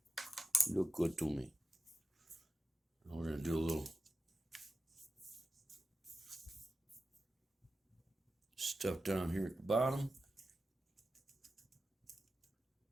Look good to me. Now we're going to do a little stuff down here at the bottom.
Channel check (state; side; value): normal; both; correlation 0.90